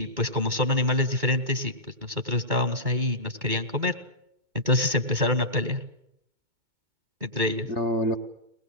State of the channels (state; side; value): late; left; 2.2 ms